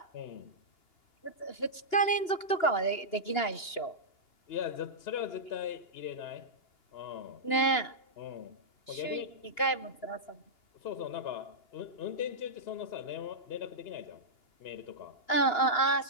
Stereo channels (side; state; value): right; late; 2.8 ms